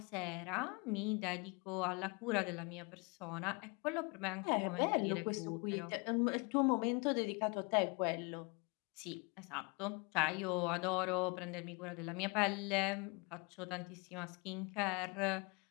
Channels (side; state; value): right; quieter; 30.0 dB